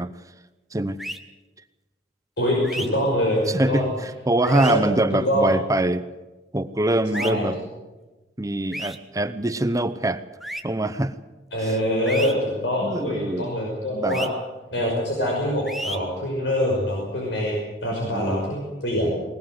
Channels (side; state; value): both; normal; correlation 0.45